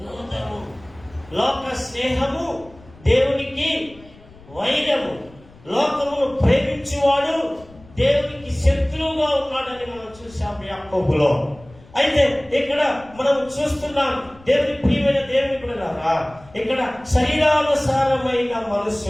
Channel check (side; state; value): left; noise; rumble, 24 dB below the sound